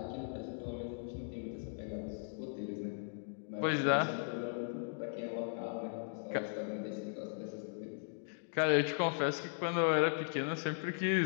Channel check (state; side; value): silent; right; digital silence